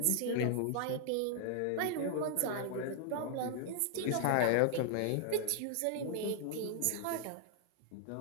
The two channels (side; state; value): both; different; correlation -0.01